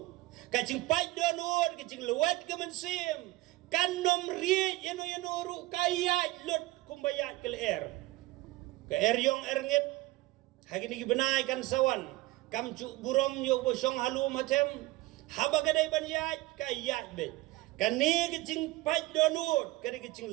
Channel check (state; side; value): quieter; left; 19.2 dB